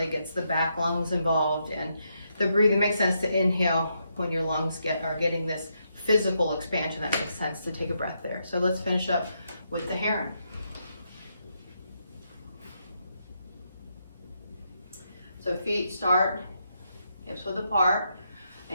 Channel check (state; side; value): inverted; both; correlation -0.80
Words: gets the back lungs involved. And the breathing makes sense to inhale when your lungs are getting this physical expansion. That makes sense to take a breath there. So let's finish up with the heron. So feet start hips width apart,